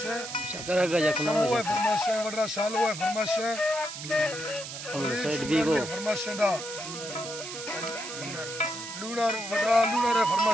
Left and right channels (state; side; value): noise; right; hiss, 9 dB below the sound